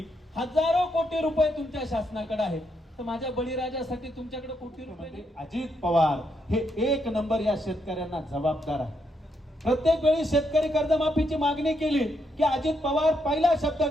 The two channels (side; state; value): both; normal; correlation 0.78